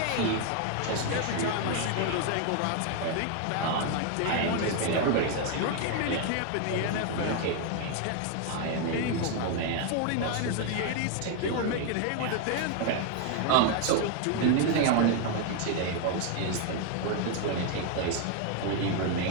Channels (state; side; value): different; both; correlation 0.01